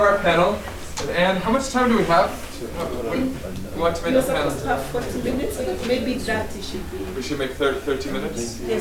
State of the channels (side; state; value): both; identical; correlation 1.00